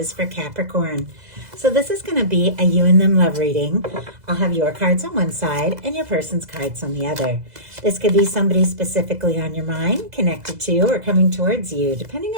for Capricorn. So this is going to be a you and them love reading. I'll have your cards on one side and your person's cards on the other. This could be somebody specifically on your mind, connected to, or coming towards you, depending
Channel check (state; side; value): late; left; 2.0 ms